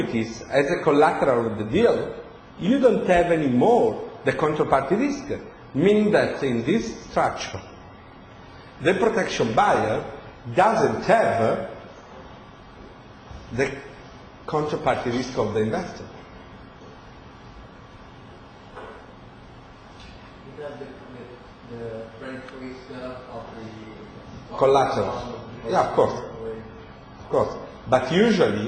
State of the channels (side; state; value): both; identical; correlation 1.00